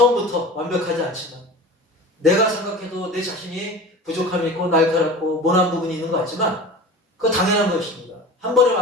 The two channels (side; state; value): both; normal; correlation 0.36